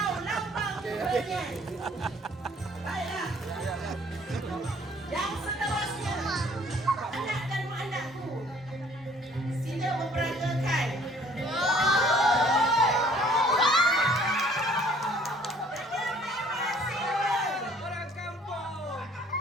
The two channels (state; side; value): normal; both; correlation 0.57